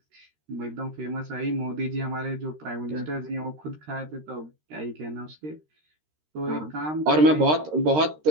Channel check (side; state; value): left; late; 13 ms